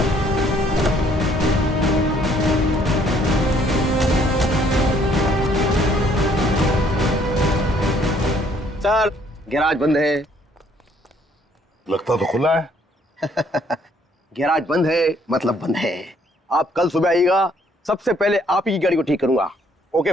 सर, गैराज बंद है। लगता तो खुला है। गैराज बंद है मतलब बंद है। आप कल सुबह आइएगा, सबसे पहले आप ही की गाड़ी को ठीक करूंगा। Okay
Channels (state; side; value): normal; both; correlation 0.64